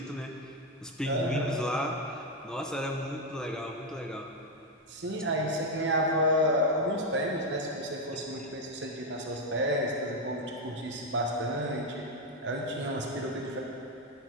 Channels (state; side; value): normal; both; correlation 0.06